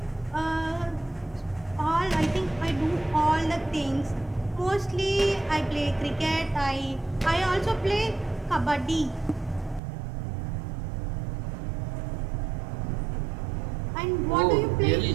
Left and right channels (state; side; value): drops out; left; at 9.8 s